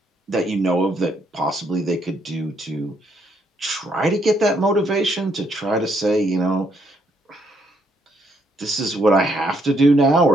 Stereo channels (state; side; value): normal; both; correlation 0.72